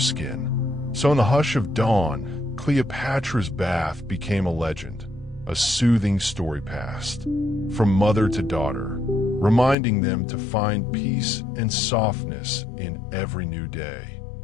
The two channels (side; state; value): right; drops out; at 9.8 s